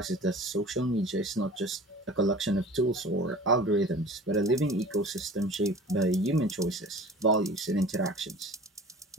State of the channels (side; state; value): both; normal; correlation 0.42